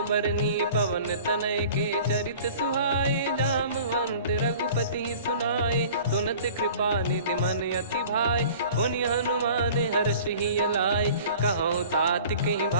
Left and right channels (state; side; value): inverted; both; correlation -0.45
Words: बरनी। पवन तनय के चरित सुहाए, जामवंत रघुपति सुनाए। सुनत कृपा निधि मन अति भाई, पुनि हनुमान हर्ष ही लाए। कहो तात कहीं